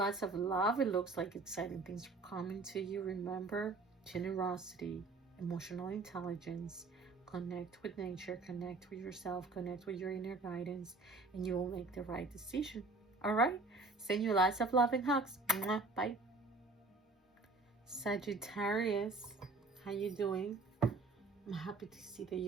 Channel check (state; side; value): quieter; left; 3.6 dB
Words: of love. It looks like exciting things are coming to you. Remember, generosity, emotional intelligence, connect with nature, connect with yourself, connect with your inner guidance, and you will make the right decision. All right? Send you lots of love and hugs. Mwah. Bye. Sagittarius, how you doing? I'm happy to see that